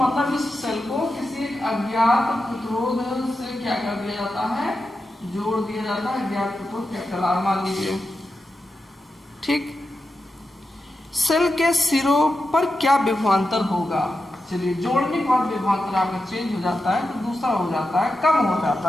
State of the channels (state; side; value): normal; both; correlation 0.89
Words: इस सेल को किसी एक अज्ञात प्रतिरोध से क्या कर दिया जाता है, जोड़ दिया जाता है। अज्ञात प्रतिरोध कैपिटल आर मान लीजिए। ठीक, सेल के सिरों पर क्या विभवांतर होगा, चलिए जोड़ने के बाद विभवांतर आपका चेंज हो जाता है, तो दूसरा हो जाता है, कम हो